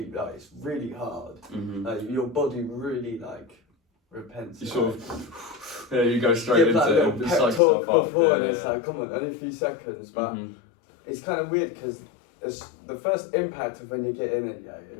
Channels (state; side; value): drops out; right; at 7.6 s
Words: like, it's really hard. Like your body really like repents. You sort of you go straight into it and pep psych talk yourself up. before, and it's like, come on, only a few seconds. But it's kind of weird because it's the first impact of when you get in it.